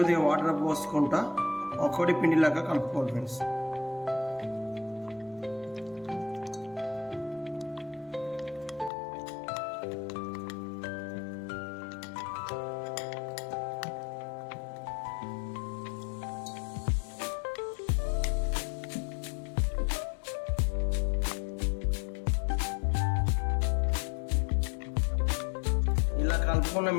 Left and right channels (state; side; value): drops out; right; at 8.9 s